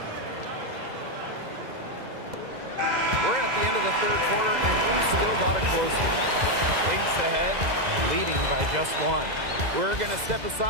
We're at the end of the third quarter, and we've still got a close one. Lynx ahead, leading by just 1. We're going to step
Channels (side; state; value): left; late; 2.0 ms